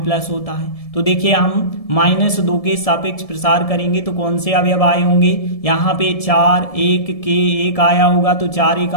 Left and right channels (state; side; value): late; right; 1.7 ms